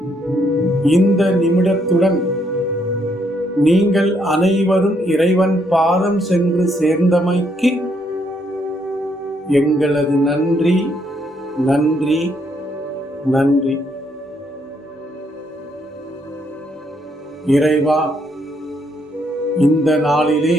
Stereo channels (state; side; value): normal; both; correlation 0.73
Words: இந்த நிமிடத்துடன் நீங்கள் அனைவரும் இறைவன் பாதம் சென்று சேர்ந்தமைக்கு எங்களது நன்றி நன்றி நன்றி. இறைவா, இந்த நாளிலே